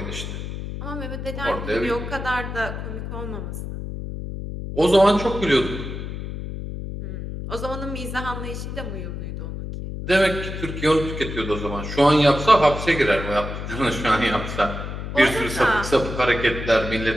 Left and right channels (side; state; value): left; noise; hum, 7 dB below the sound